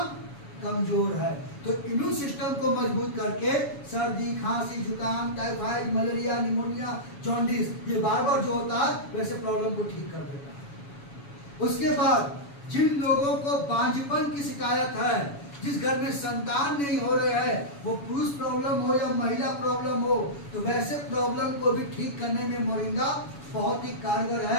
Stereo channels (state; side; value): late; right; 7.1 ms